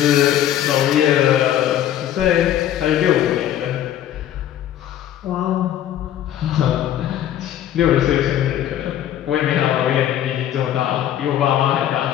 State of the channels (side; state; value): right; quieter; 11.3 dB